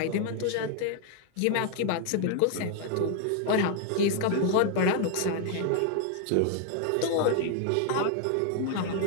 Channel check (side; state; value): both; different; correlation 0.00